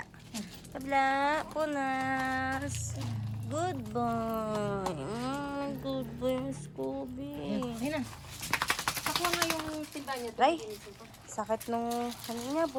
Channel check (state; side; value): identical; both; correlation 1.00